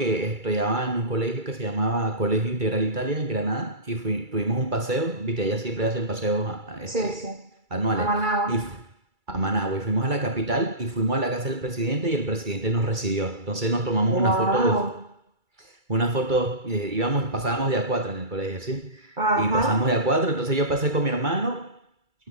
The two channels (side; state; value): left; late; 2.3 ms